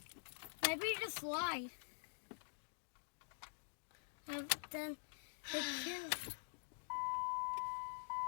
Maybe just slide. And then they can.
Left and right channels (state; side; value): silent; right; digital silence